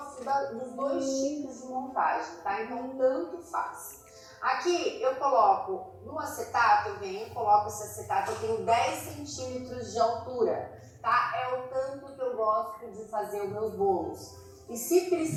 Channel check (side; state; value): both; identical; correlation 1.00